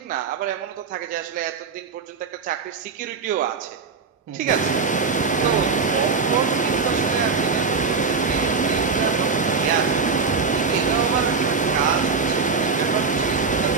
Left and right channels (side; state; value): left; quieter; 5.0 dB